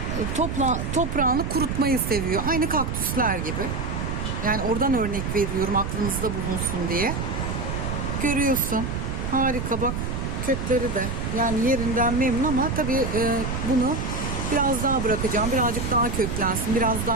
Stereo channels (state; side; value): noise; right; rumble, 3 dB below the sound